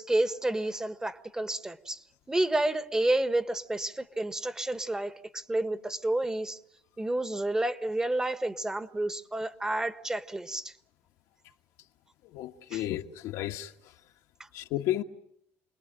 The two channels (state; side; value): normal; both; correlation 0.86